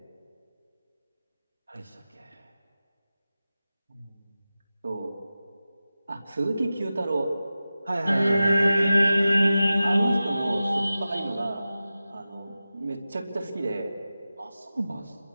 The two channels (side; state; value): both; inverted; correlation -0.94